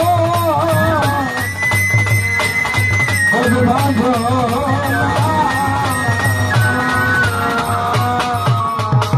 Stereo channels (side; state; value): both; identical; correlation 1.00